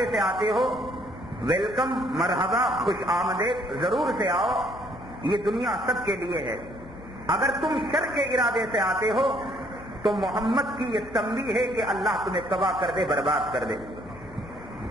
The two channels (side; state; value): left; noise; hum, 19 dB below the sound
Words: سے آتے ہو، ویلکم، مرحبا، خوش آمدید، ضرور سے آؤ، یہ دنیا سب کے لیے ہے. اگر تم شر کے ارادے سے آتے ہو تو محمد کی یہ تنبیہ ہے کہ اللہ تمہیں تباہ کر دے، برباد کر دے.